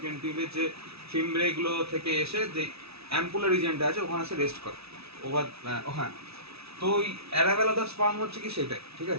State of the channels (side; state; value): left; late; 0.78 ms